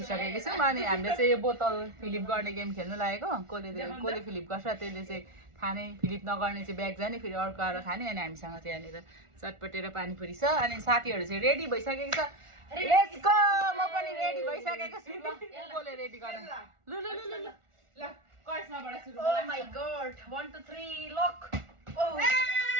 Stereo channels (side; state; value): left; late; 1.4 ms